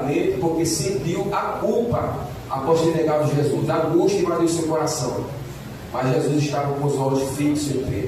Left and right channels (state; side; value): identical; both; correlation 1.00